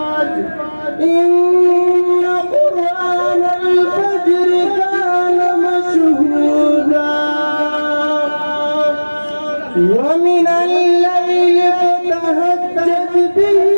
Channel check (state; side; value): inverted; both; correlation -1.00